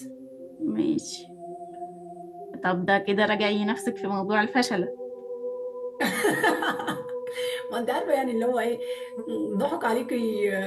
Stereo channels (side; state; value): both; identical; correlation 1.00